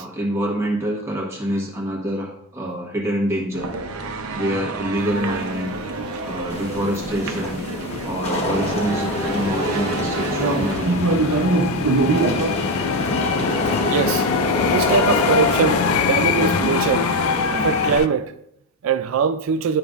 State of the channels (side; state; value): both; normal; correlation 0.14